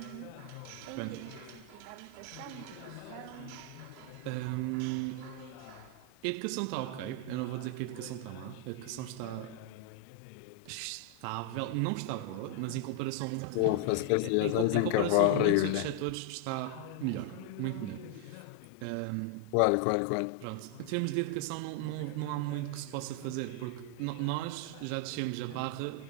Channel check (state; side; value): different; both; correlation 0.00